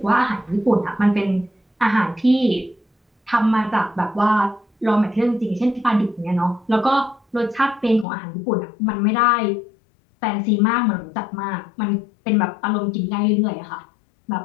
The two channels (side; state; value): right; drops out; at 8.1 s